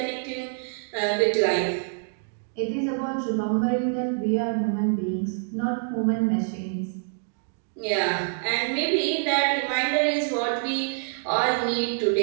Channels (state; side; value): silent; left; digital silence